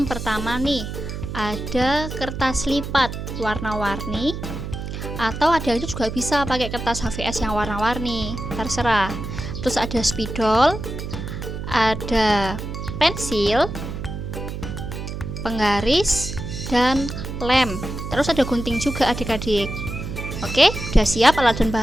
pertama nih, ada kertas lipat warna-warni, atau adik-adik juga bisa pakai kertas HVS yang warna-warni, terserah. Terus ada spidol, ada pensil, penggaris, dan lem. Terus ada gunting juga adik-adik. Oke, udah siap alat dan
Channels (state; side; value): noise; right; hum, 7 dB below the sound